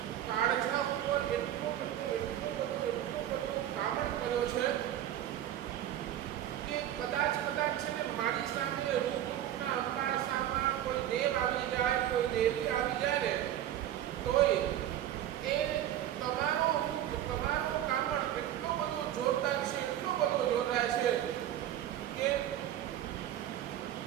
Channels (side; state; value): left; quieter; 11.9 dB